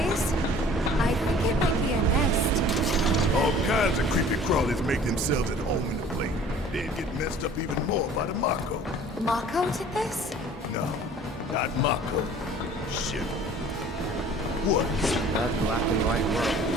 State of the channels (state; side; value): normal; both; correlation 0.49